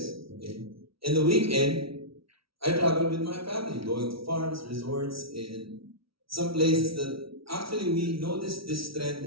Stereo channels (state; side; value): late; left; 0.75 ms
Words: Okay? And the weekend, I travel with my family, going to farms, resorts, and some places that actually we noticed this